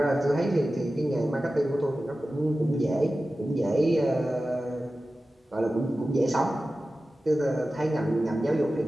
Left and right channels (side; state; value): both; normal; correlation 0.95